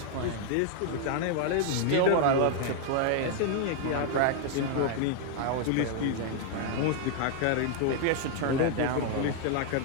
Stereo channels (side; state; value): both; different; correlation 0.00